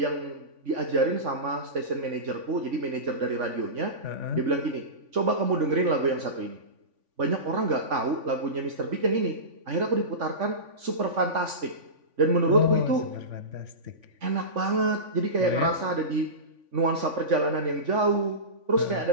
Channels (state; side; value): late; left; 3.5 ms